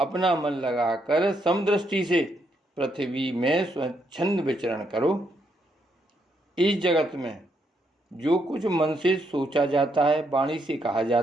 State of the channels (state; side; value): normal; both; correlation 0.76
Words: मन लगाकर समदृष्टि से पृथ्वी में स्वच्छंद विचरण करो। इस जगत में जो कुछ मन से सोचा जाता है, वाणी से कहा